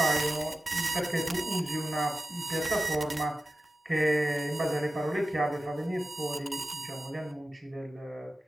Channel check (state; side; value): normal; both; correlation 0.94